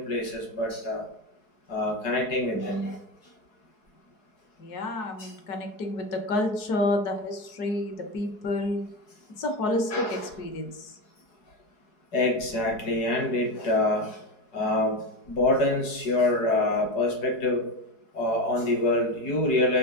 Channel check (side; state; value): right; late; 4.7 ms